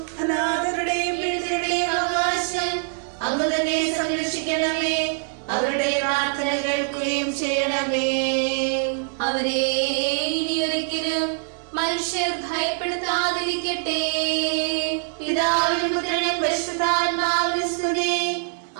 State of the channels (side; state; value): left; silent; 61 dB below the other